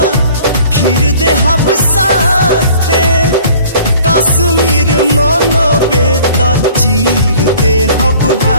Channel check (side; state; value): both; inverted; correlation -0.51